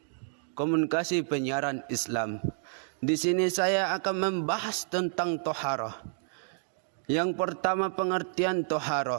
Komunikasi Penyiaran Islam. Di sini saya akan membahas tentang toharoh. Yang pertama, pengertian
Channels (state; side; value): silent; left; digital silence